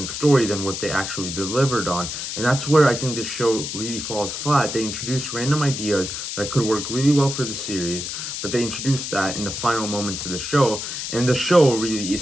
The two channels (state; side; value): noise; left; hiss, 5 dB below the sound